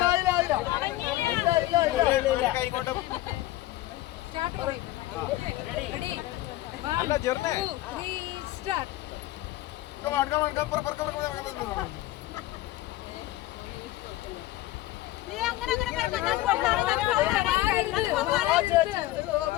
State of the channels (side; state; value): right; quieter; 16.2 dB